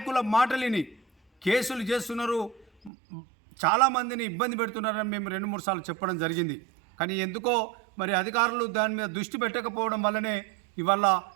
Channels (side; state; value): left; drops out; at 2.9 s